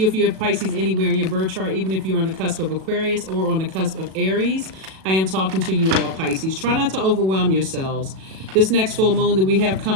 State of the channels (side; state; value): left; late; 37 ms